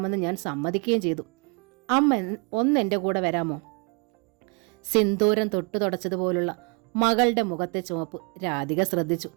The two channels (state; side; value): quieter; left; 33.9 dB